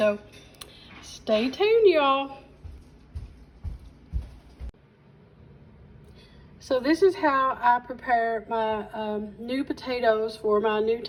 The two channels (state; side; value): identical; both; correlation 1.00